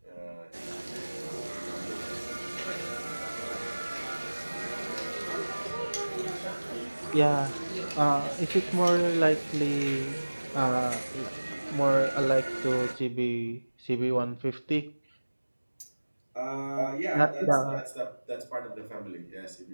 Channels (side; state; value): both; inverted; correlation -1.00